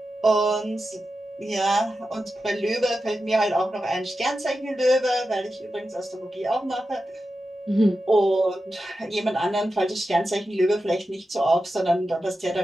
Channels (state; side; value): normal; both; correlation 0.91